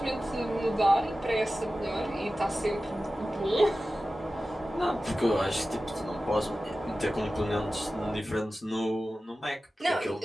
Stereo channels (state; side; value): normal; both; correlation 0.95